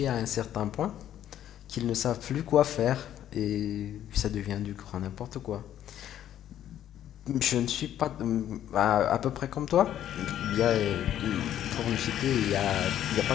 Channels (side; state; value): right; quieter; 11.2 dB